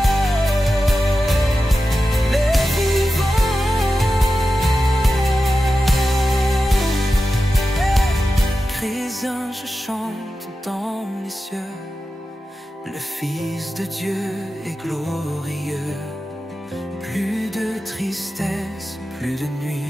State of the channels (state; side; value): normal; both; correlation 0.92